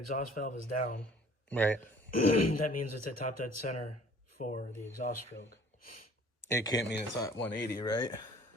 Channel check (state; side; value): normal; both; correlation 0.52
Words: valve is down. Right. That means it's at top dead center for the exhaust stroke. It can't mean it's at 180, right?